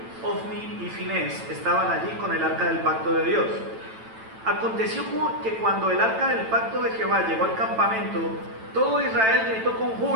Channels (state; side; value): late; left; 9.0 ms